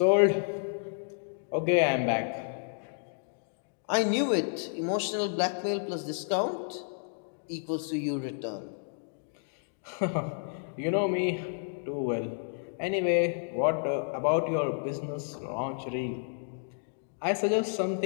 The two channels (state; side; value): silent; right; digital silence